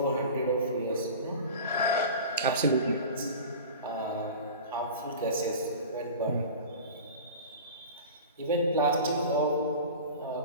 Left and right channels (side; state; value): both; inverted; correlation -0.35